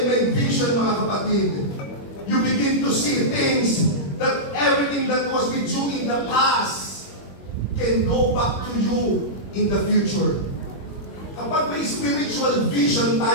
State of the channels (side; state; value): right; late; 21 ms